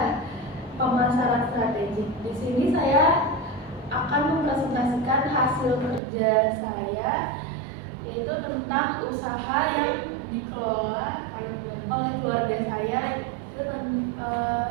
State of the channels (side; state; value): left; drops out; at 6.0 s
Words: pemasaran strategik. Di sini saya akan mempresentasikan hasil kerja saya, yaitu tentang usaha yang dikelola oleh keluarga saya,